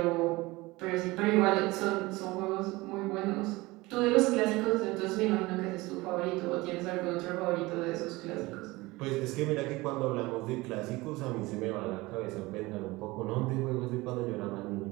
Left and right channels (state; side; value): quieter; left; 21.4 dB